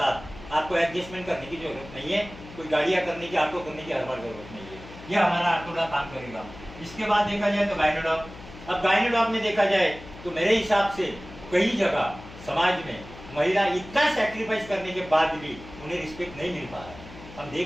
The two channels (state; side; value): noise; left; hum, 16 dB below the sound